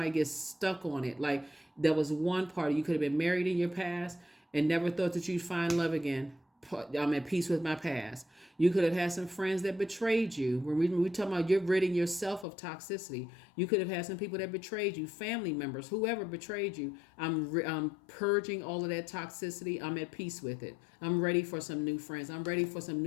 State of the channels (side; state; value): right; drops out; at 12.5 s